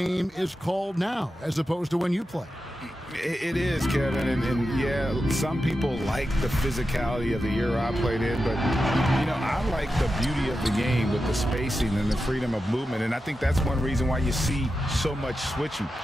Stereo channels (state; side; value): normal; both; correlation 0.90